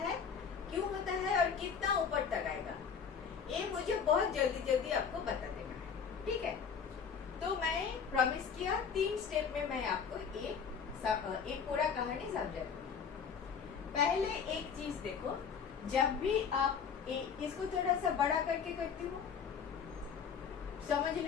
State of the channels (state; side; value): quieter; right; 6.6 dB